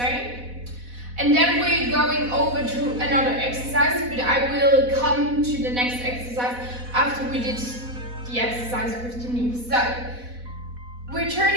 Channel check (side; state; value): left; late; 4.1 ms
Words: And then we're going over to another exercise, but I will come to the next exercise after we did the exercise with the knee. So we're